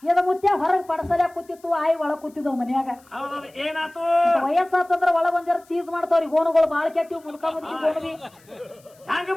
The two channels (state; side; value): noise; left; hiss, 30 dB below the sound